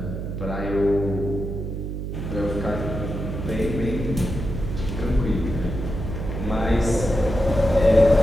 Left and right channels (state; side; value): noise; right; hum, 5 dB below the sound